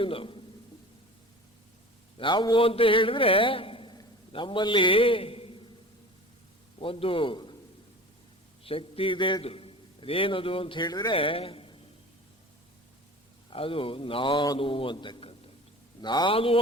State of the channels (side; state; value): both; normal; correlation 0.38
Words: ನಾವು ಅಂತ ಹೇಳಿದ್ರೆ ನಮ್ಮಲ್ಲಿ ಒಂದು ಶಕ್ತಿ ಇದೆ. ಅದು ಏನದು ಅಂತ ಹೇಳಿದ್ರೆ ಅದು ನಾನು ಅಂತಕ್ಕಂಥದ್ದು. ನಾನು